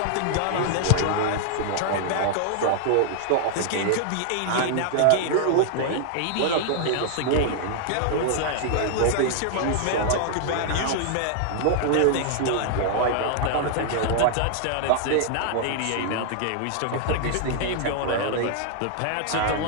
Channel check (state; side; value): different; both; correlation -0.01